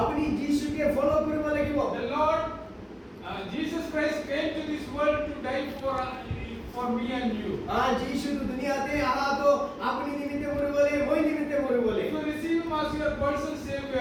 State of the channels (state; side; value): identical; both; correlation 1.00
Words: আপনি যিশুকে ফলো কৰিব লাগিব The Lord, Jesus Christ came to this world to die for me and you. যিশু তো দুনিয়াতে আহা তো আপনি নিমিত্তে মরে বলে মই নিমিত্তে মরে বলে If you receive Him as your personal